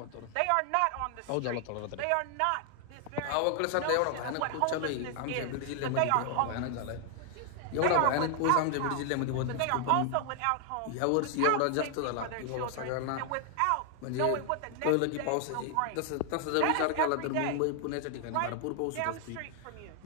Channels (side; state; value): both; different; correlation 0.00